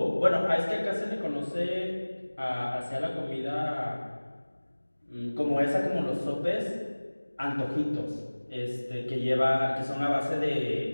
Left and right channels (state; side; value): inverted; both; correlation -1.00